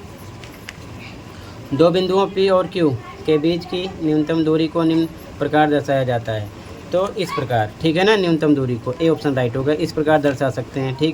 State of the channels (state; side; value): identical; both; correlation 1.00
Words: दो बिंदुओं P और Q के बीच की न्यूनतम दूरी को निम्न प्रकार दर्शाया जाता है। तो इस प्रकार, ठीक है ना, न्यूनतम दूरी को, ए ऑप्शन राइट होगा। इस प्रकार दर्शा सकते हैं।